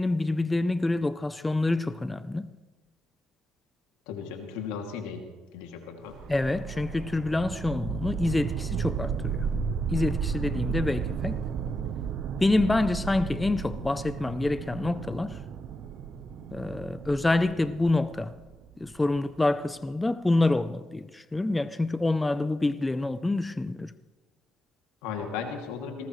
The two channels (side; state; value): both; normal; correlation 0.89